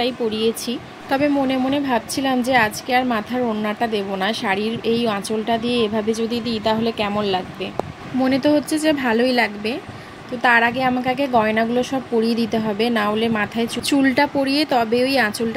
পরিয়েছি। তবে মনে মনে ভাবছিলাম যে আজকে আর মাথার ওড়নাটা দেবো না, শাড়ির এই আঁচলটা দিয়ে এভাবে যদি দিই তাহলে কেমন লাগবে। মনে তো হচ্ছে যে ভালোই লাগবে। তো তার আগে আমাকে আগে গয়নাগুলো সব পরিয়ে দিতে হবে, না হলে মাথায় চুলটা পরিয়ে তবে ওই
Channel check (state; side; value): identical; both; correlation 1.00